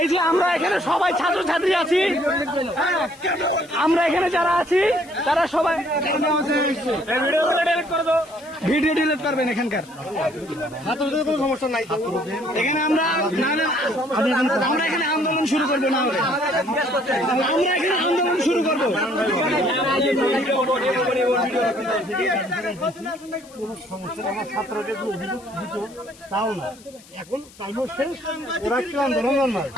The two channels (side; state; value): left; noise; hiss, 24 dB below the sound